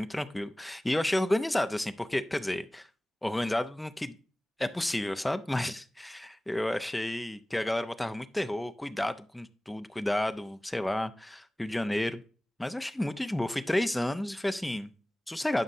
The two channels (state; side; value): normal; both; correlation 0.98